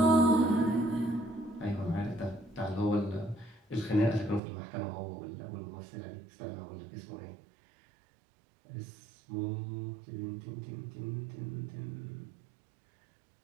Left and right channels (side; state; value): left; drops out; at 4.4 s